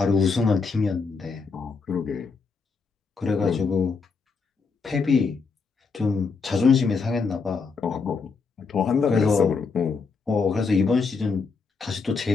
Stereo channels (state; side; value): quieter; right; 4.8 dB